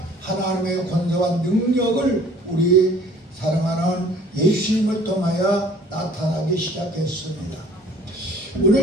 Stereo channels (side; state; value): both; normal; correlation 0.52